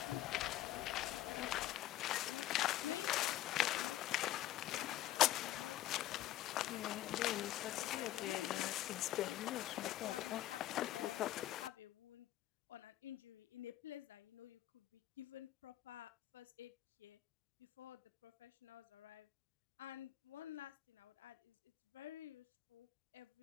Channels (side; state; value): right; quieter; 14.2 dB